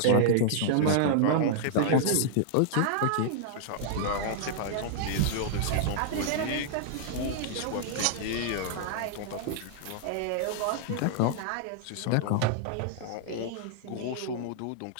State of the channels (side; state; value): both; different; correlation -0.01